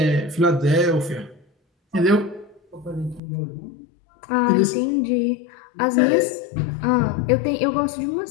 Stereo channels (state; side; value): drops out; right; at 3.2 s